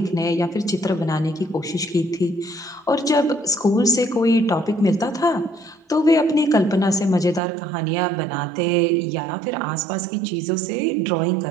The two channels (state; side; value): drops out; left; at 7.4 s